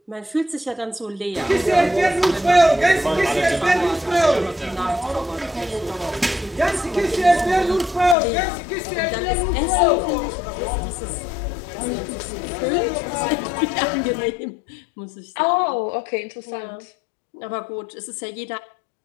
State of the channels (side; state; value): right; drops out; at 8.2 s